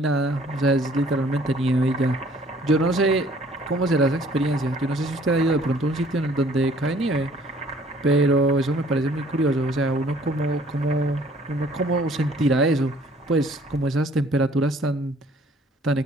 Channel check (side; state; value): both; normal; correlation 0.57